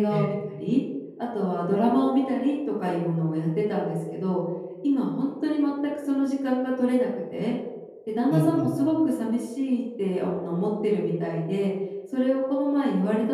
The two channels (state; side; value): identical; both; correlation 1.00